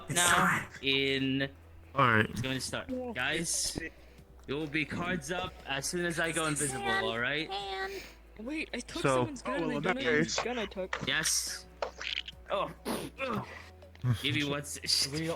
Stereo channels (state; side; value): identical; both; correlation 1.00